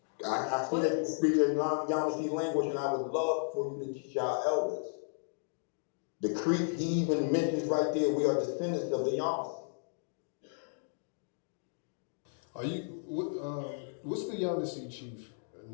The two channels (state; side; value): silent; right; digital silence